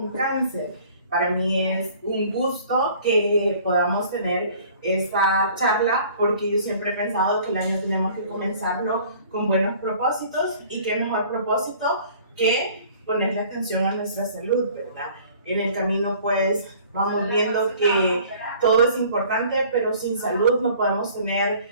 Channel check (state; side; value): inverted; both; correlation -0.51